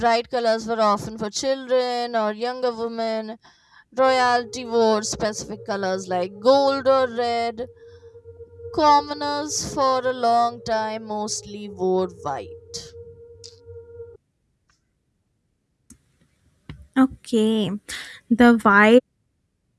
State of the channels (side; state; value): both; identical; correlation 1.00